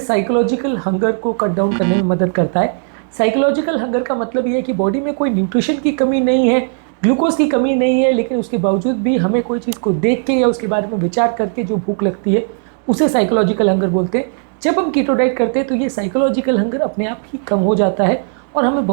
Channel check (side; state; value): left; silent; 59 dB below the other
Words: हंगर को कट डाउन करने में मदद करता है। साइकोलॉजिकल हंगर का मतलब ये है कि बॉडी में कोई न्यूट्रिशन की कमी नहीं है, ग्लूकोज की कमी नहीं है, लेकिन उसके बावजूद भी हमें कोई चीज़ को देख के या उसके बारे में विचार करके जो भूख लगती है उसे साइकोलॉजिकल हंगर बोलते हैं। जब हम कीटो डाइट करते हैं तो ये साइकोलॉजिकल हंगर अपने आप ही कम हो जाता है और हमें